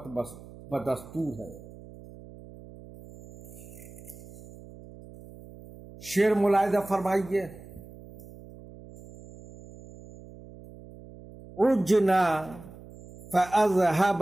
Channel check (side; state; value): right; noise; hum, 18 dB below the sound